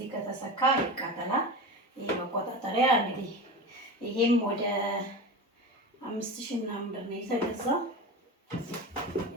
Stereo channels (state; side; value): normal; both; correlation 0.27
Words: ከተሰካ ይቃጠላል። ይሄ መቆጣጠሪያ እንግዲህ ይሄም ወደ 5000 ምናምን ብር ነው የተገዛው።